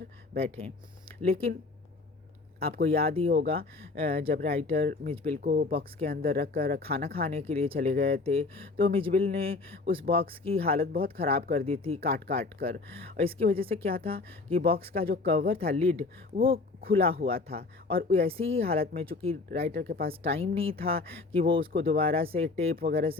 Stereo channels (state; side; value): quieter; right; 3.7 dB